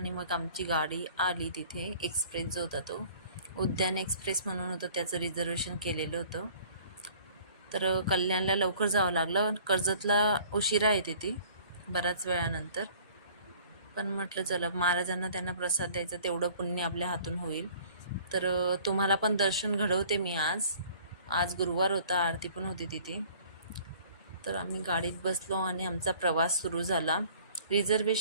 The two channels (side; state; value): both; inverted; correlation -0.52